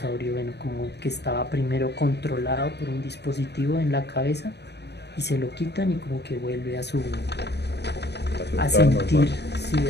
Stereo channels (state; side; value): late; right; 0.49 ms